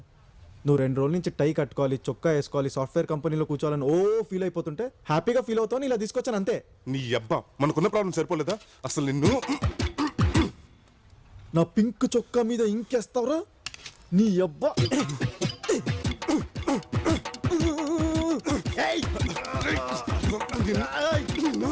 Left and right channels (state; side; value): identical; both; correlation 1.00